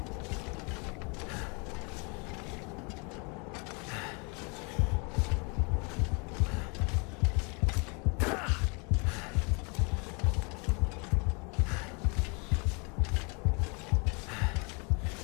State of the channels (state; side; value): quieter; right; 32.5 dB